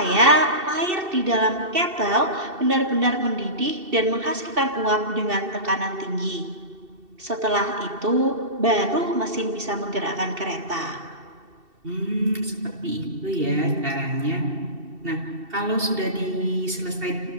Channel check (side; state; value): left; late; 2.7 ms